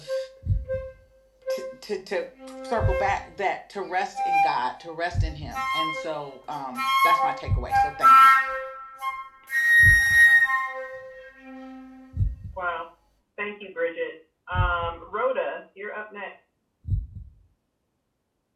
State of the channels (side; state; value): both; identical; correlation 1.00